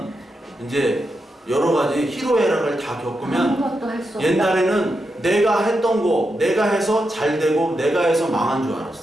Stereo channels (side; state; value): both; normal; correlation 0.86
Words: 이제 여러 가지 희로애락을 다 겪으면 옛날에는 내가 했던 거 내가 해서 잘 되고 내가 해서 망한 줄